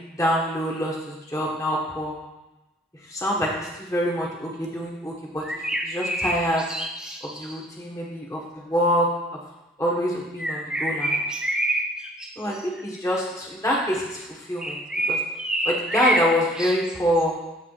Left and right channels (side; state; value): both; normal; correlation 0.56